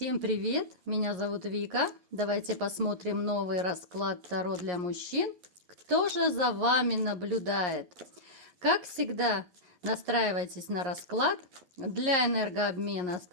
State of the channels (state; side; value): late; left; 11 ms